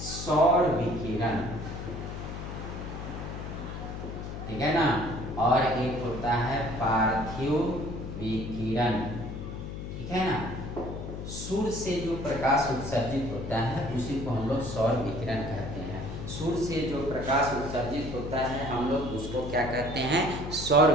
विकिरण, ठीक है ना, और एक होता है पार्थिव विकिरण, ठीक है ना। सूर्य से जो प्रकाश उत्सर्जित होता है उसी को हम लोग सौर विकिरण कहते हैं। सूर्य से जो प्रकाश उत्सर्जित होता है हम लोग उसको क्या कहते हैं, सौर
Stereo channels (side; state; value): left; noise; hum, 7 dB below the sound